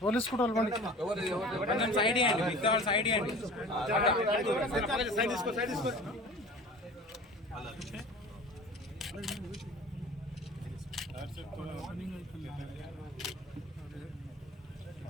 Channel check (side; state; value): both; normal; correlation 0.41